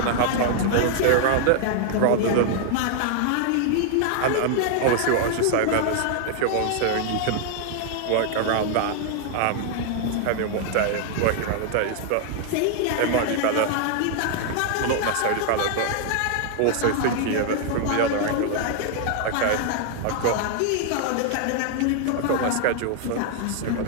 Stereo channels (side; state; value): both; different; correlation 0.00